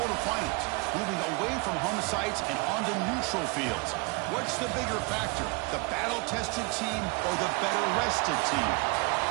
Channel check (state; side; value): quieter; left; 27.9 dB